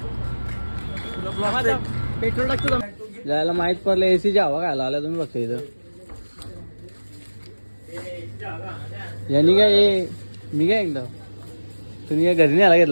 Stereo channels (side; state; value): both; inverted; correlation -1.00